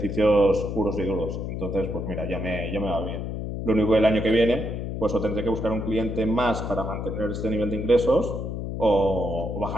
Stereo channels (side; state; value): left; noise; hum, 4 dB below the sound